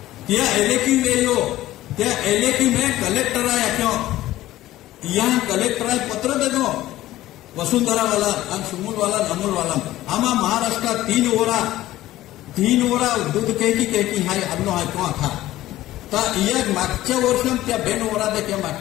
त्या एलेकी वेयो त्या एलेकी में कलेक्टर आया क्यों यहाँ कलेक्टर आए पत्र दे दो वसुंधरा वाला और सुमुल वाला नमुल वाला आमा महाराष्ट्र 3 ओरा दूध कहकी हाय अन्नो हाय तो था ता या मागच्या वर्षात त्या 2 ओरा देखील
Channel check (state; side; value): quieter; right; 15.3 dB